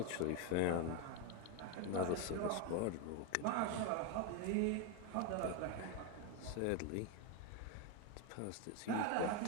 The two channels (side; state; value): both; different; correlation 0.02